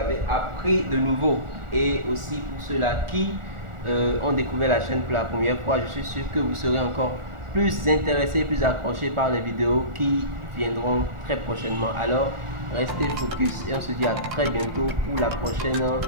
appris de nouveau. Et aussi pour ceux-là qui ont découvert la chaîne pour la première fois, je suis sûr que vous serez encore plus intéressés, plus accrochés par les vidéos qui viendront très prochainement. Alors restez focus et on se dit à très bientôt pour la prochaine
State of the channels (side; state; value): left; late; 1.4 ms